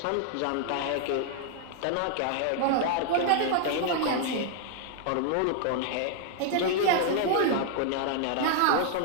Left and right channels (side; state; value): both; different; correlation 0.00